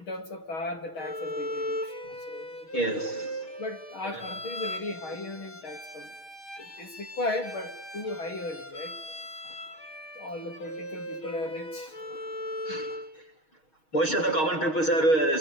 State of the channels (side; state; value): right; late; 6.3 ms